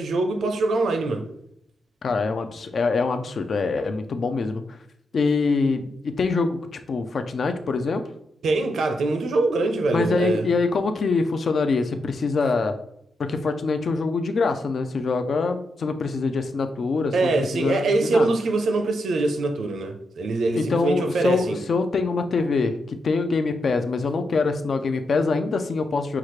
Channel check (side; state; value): both; normal; correlation 0.83